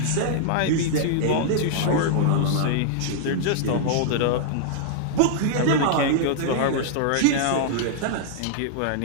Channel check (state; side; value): different; both; correlation -0.01